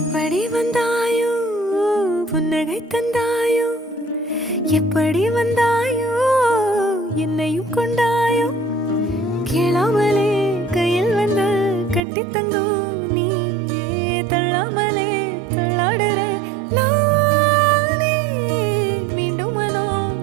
வந்தாயோ புன்னகை தந்தாயோ, எப்படி வந்தாயோ என்னையும் கொண்டாயோ, கேளாமலே கையில் வந்து கட்டி தங்கோ நீ தள்ளாமலே தள்ளாடுற நானே, மீண்டும் மனோ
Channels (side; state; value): left; drops out; at 12.0 s